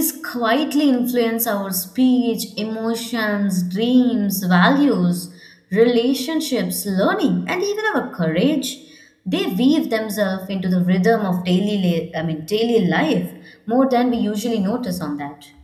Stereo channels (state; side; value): identical; both; correlation 1.00